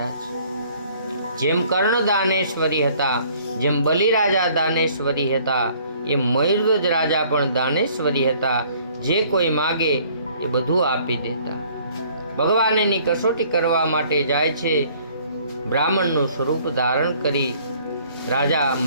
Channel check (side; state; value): both; inverted; correlation -0.58